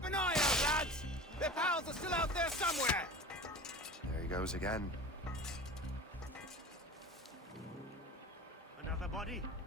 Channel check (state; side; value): normal; both; correlation 0.35